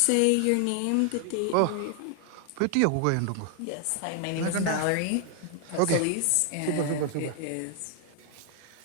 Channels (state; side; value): different; both; correlation 0.00